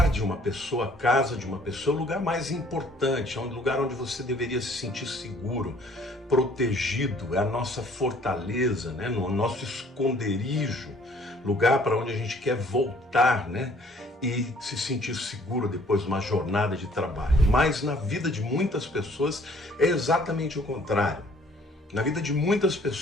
de uma pessoa, a casa de uma pessoa, é o lugar mais importante, é o lugar onde você deveria se sentir seguro, protegido, é a nossa fortaleza, né? O nosso esconderijo, lugar para onde a gente quer voltar, né? E se sentir seguro depois de uma jornada de trabalho. Mas na vida de muitas pessoas é exatamente o contrário. Na vida de muitas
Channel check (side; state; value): both; normal; correlation 0.58